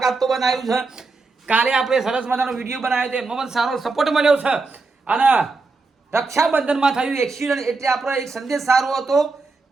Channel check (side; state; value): left; quieter; 3.9 dB